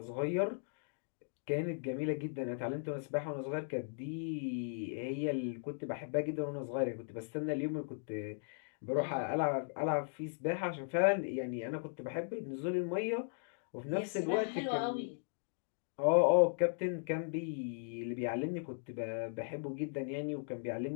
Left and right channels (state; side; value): silent; right; digital silence